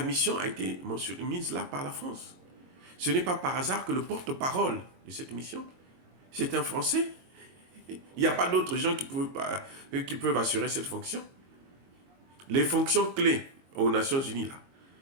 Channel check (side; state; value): left; late; 22 ms